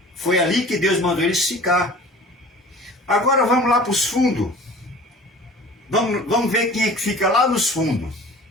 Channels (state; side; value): normal; both; correlation 0.43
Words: Foi ali que Deus mandou eles ficar. Agora vamos lá para os fundos. Vamos ver quem é que fica lá nos fundos.